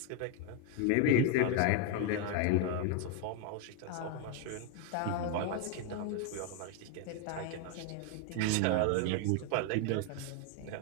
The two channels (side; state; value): both; different; correlation 0.00